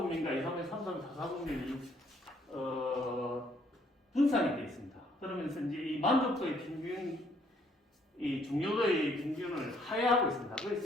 2, 3분, 3, 3, 4, 4분면이 분산이 되어 있습니다. 그러면서 이제 이 만족도의 평균, 이 중요도의 평균을 하회하고 있습니다.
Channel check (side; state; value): both; normal; correlation 0.66